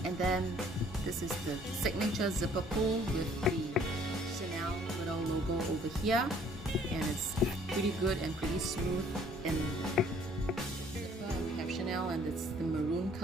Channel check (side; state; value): both; normal; correlation 0.59